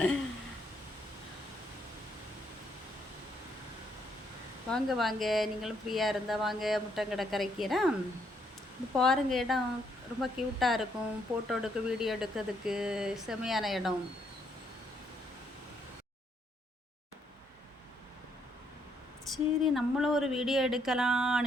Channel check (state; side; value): normal; both; correlation 0.73